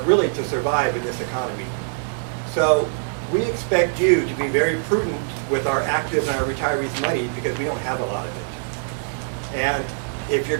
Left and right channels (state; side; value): silent; left; digital silence